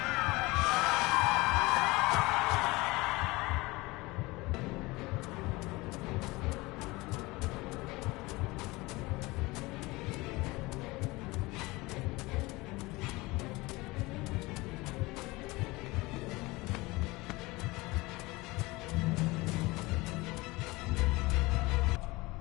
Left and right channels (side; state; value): right; quieter; 22.2 dB